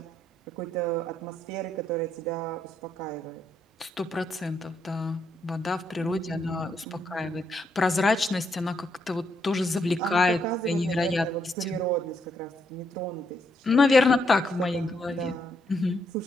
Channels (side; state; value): both; normal; correlation 0.76